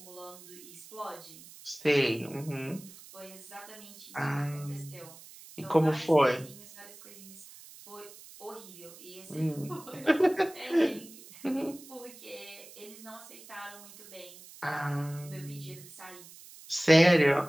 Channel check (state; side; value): noise; right; hiss, 19 dB below the sound